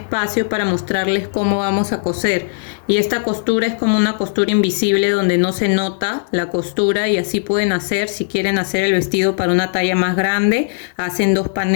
para mostrarles cómo vamos a coser. Y esta costura es como una costura invisible donde no se nota la costura, y así pueden hacer, si quieren hacer el vestido para una talla más grande, hacen 2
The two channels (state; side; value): silent; right; 68 dB below the other